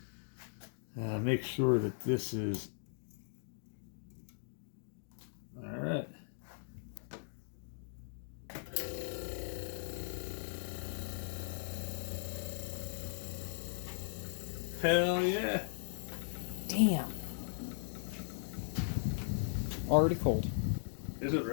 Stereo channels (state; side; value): silent; right; digital silence